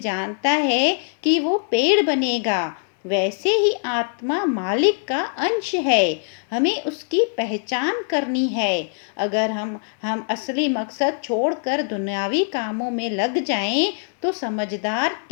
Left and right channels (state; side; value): silent; right; 59 dB below the other